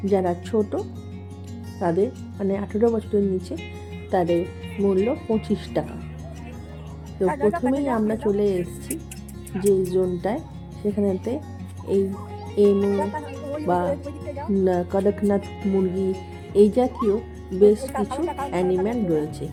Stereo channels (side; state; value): both; identical; correlation 1.00